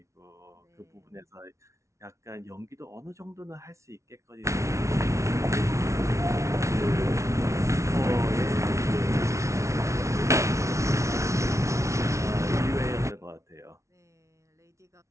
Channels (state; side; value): late; left; 0.14 ms